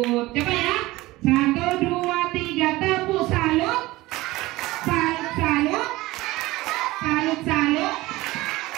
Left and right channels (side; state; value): left; quieter; 19.2 dB